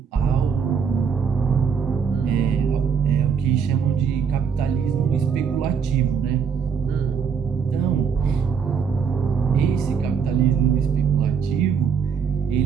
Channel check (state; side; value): quieter; left; 6.6 dB